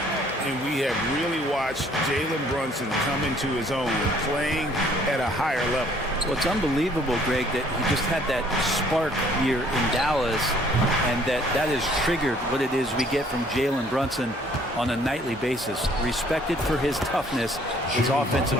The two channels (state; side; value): normal; both; correlation 0.60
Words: And we have really watched Jalen Brunson come into his own, playing at a higher level. Well, it's unbelievable, Greg, that he just had that spark here in Dallas, and that has triggered what it is we get from Jalen Brunson on a nightly basis. Respected for his toughness, his